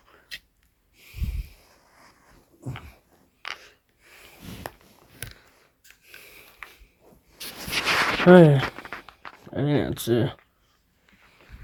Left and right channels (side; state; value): both; identical; correlation 1.00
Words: Alright, I think that's it.